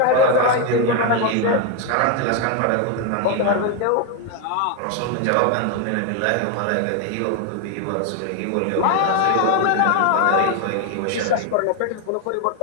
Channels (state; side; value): different; both; correlation 0.01